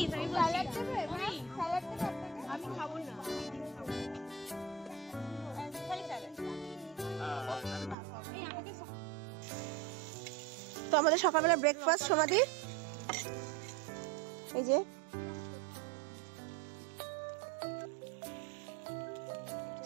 তো আমাদের সকালবেলা ব্রেকফাস্ট সমাধি এই যে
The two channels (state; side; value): drops out; left; at 8.0 s